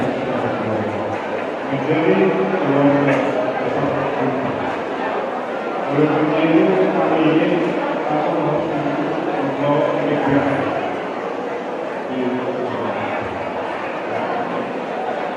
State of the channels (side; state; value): both; identical; correlation 1.00